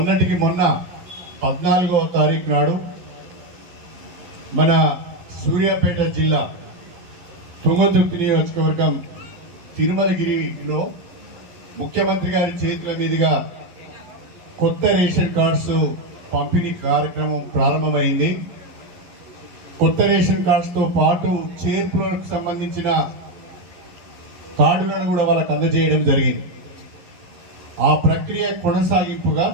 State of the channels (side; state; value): left; late; 11 ms